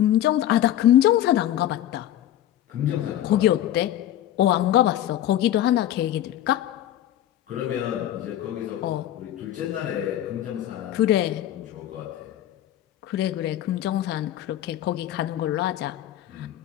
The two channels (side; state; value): right; quieter; 12.3 dB